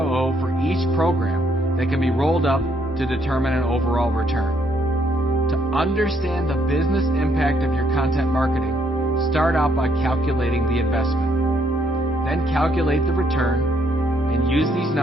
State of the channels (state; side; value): normal; both; correlation 0.70